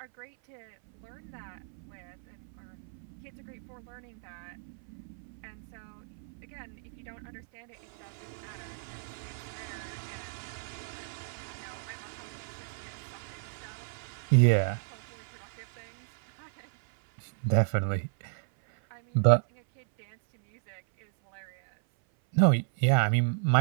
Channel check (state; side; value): silent; left; 56 dB below the other